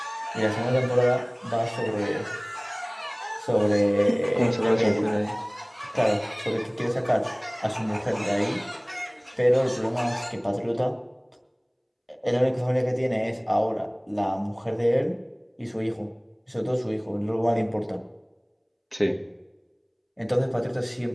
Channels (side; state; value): both; identical; correlation 1.00